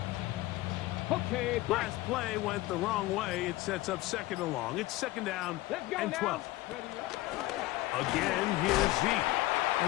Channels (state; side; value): quieter; right; 18.1 dB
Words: Okay, last play went the wrong way. It sets up second and long. It's second down and 12. Again, here's Zeke.